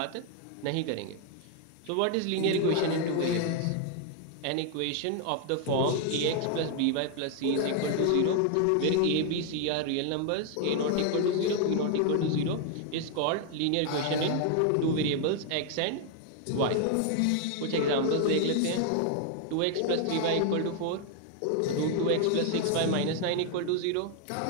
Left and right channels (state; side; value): different; both; correlation 0.00